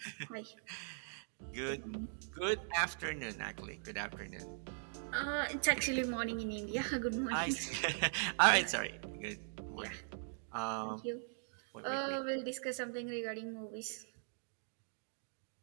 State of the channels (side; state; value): left; silent; digital silence